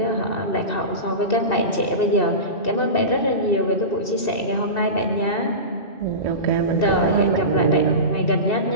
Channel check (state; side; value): late; right; 2.7 ms